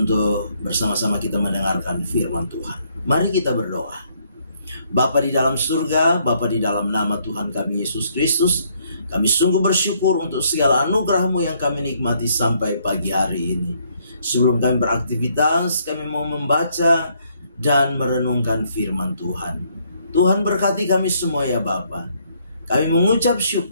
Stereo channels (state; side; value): inverted; both; correlation -0.69